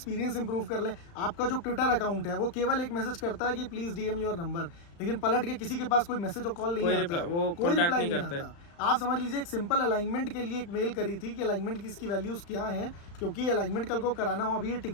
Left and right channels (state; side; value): late; right; 35 ms